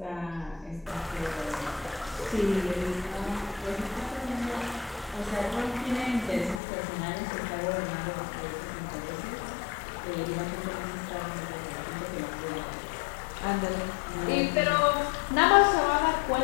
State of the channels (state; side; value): drops out; right; at 6.6 s